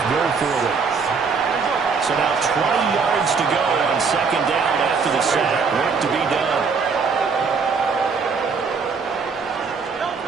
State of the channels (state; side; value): quieter; left; 5.2 dB